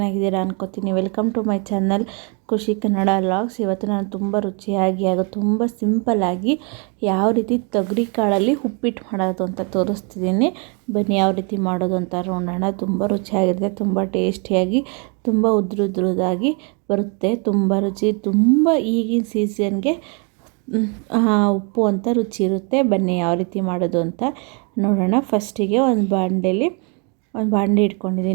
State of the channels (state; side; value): quieter; left; 34.1 dB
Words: ಅನ್ಕೋತೀನಿ. ವೆಲ್ಕಮ್ ಟು ಮೈ ಚಾನಲ್ ಖುಷಿ ಕನ್ನಡ ವ್ಲಾಗ್ಸ್. ಇವತ್ತು ನಾನು ತುಂಬ ರುಚಿಯಾಗಿ ಹಾಗೂ ತುಂಬ ಸಿಂಪಲ್ಲಾಗಿ ಯಾವ ರೀತಿ ತೊಗರಿ ಕಾಳಲ್ಲಿ ಉಪ್ಪಿಟ್ಟು ಮಾಡೋದು ಅಂತ ತೋರಿಸ್ತಿದ್ದೀನಿ. ಬನ್ನಿ ಯಾವ ರೀತಿ ಮಾಡೋದು ಅಂತ ನೋಡೋಣ. ತುಂಬ ರುಚಿಯಾಗಿರುತ್ತೆ, ತುಂಬ ಟೇಸ್ಟಿಯಾಗಿ, ತುಂಬ ಉದ್ರುದಾಗಿ ಬರುತ್ತೆ. ತುಂಬ ರುಚಿ, ತುಂಬ ಈಗಿನ ಸೀಸನ್ಗೆ ಉಪ್ಪು ಅಂತ ರುಚಿ ಇರುತ್ತೆ. ಬನ್ನಿ ಯಾವ ರೀತಿ ಮಾಡೋದು ಅಂತ ನೋಡೋಣ. ಫಸ್ಟಿಗೆ ಒಂದು ಬಾಂಡೆ